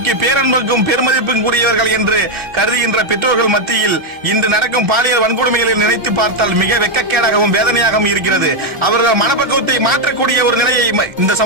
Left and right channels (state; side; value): late; left; 1.4 ms